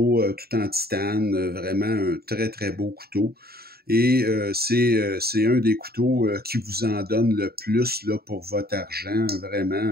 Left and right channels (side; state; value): left; late; 0.45 ms